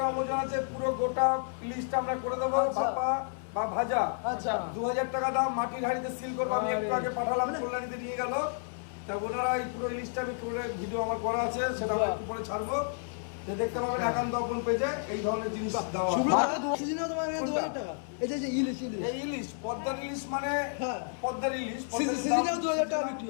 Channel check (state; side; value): silent; right; 57 dB below the other